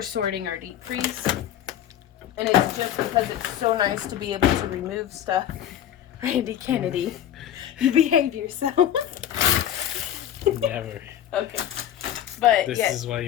sorting our deep freeze. And it's just because it's so nice to be able to remove stuff. Randy Kennedy, you behave yourself. Never. Okay. But this is why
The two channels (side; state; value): right; quieter; 10.9 dB